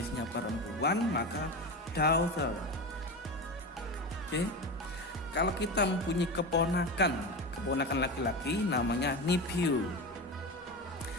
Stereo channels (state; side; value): normal; both; correlation 0.23